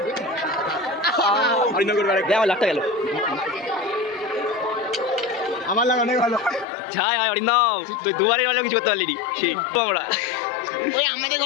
আমার লাখটা গেল আমার লাগা অনেক ভালো। ছাই হয় অরিন্দম, তুই দুবারই হলেও কিছু করতে পারলি ঠিক আমরা। ওই আমাদের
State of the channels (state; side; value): drops out; right; at 6.7 s